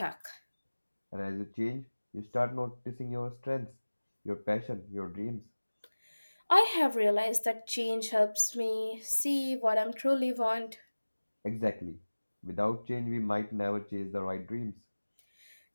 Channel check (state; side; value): inverted; both; correlation -1.00